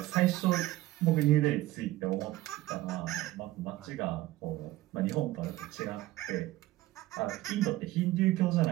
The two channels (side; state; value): left; quieter; 16.9 dB